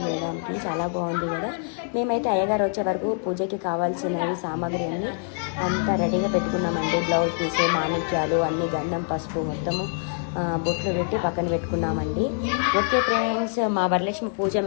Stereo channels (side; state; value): right; silent; 60 dB below the other